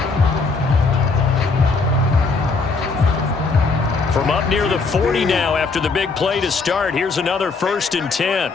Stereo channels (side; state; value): right; quieter; 4.3 dB